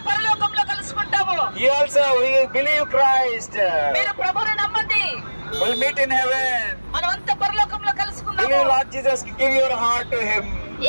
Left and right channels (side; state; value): both; inverted; correlation -1.00